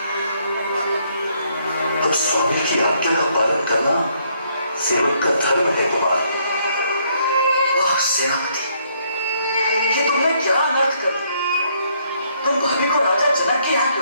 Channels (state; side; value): inverted; both; correlation -0.69